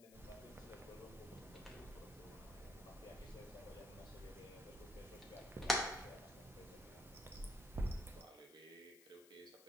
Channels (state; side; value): noise; left; hiss, 20 dB below the sound